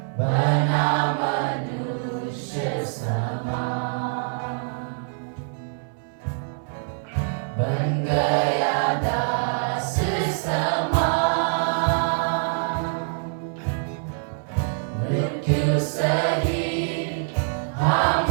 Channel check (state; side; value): silent; left; 60 dB below the other